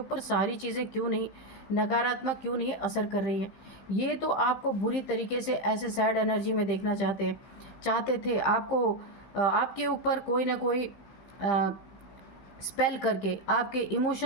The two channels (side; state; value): right; late; 15 ms